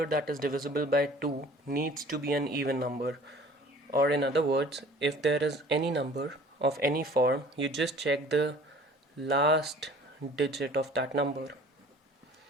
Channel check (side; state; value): both; normal; correlation 0.48